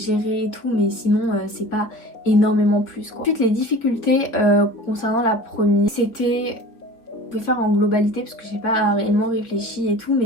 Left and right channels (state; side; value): late; right; 4.4 ms